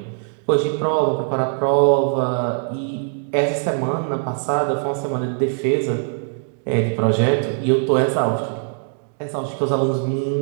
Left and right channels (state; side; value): silent; left; 65 dB below the other